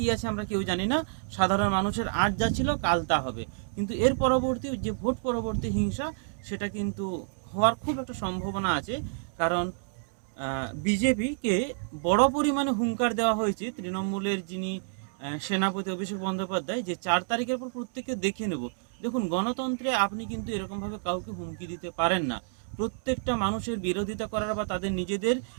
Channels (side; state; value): left; silent; digital silence